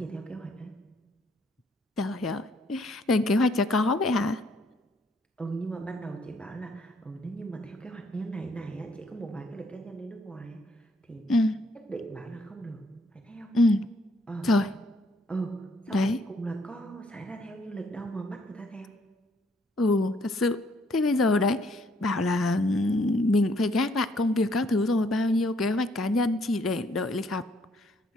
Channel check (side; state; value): both; normal; correlation 0.67